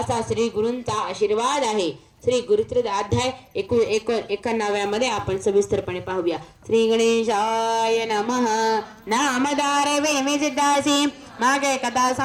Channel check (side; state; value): both; identical; correlation 1.00